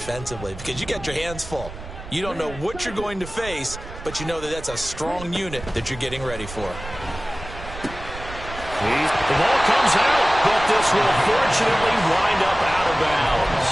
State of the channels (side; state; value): right; noise; rumble, 13 dB below the sound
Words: because you got your hands full. You don't know what you're going to face, but you know that that's a strong unit that you're getting ready for. The ball comes out, but this will fortunately wind up out of bounds.